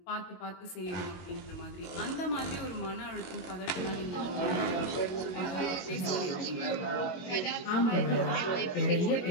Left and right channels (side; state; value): right; late; 22 ms